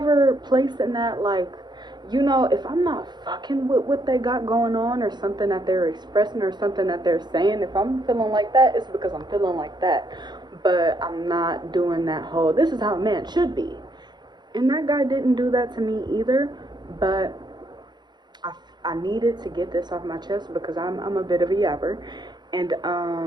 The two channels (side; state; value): left; late; 0.21 ms